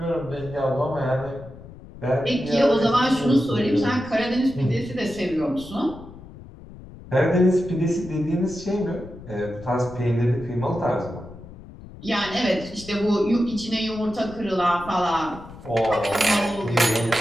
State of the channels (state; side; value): noise; left; rumble, 17 dB below the sound